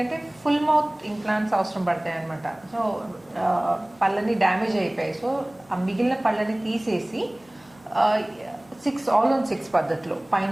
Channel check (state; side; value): noise; right; hum, 29 dB below the sound